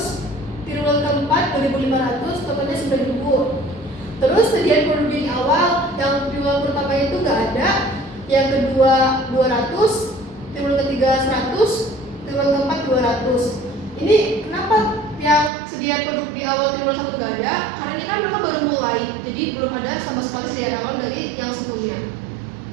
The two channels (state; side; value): drops out; left; at 15.5 s